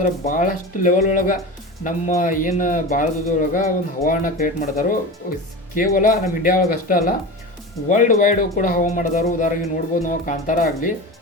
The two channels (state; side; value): normal; both; correlation 0.28